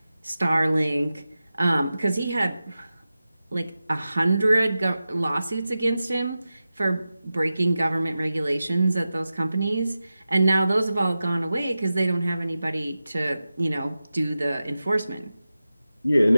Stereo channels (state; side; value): inverted; both; correlation -0.94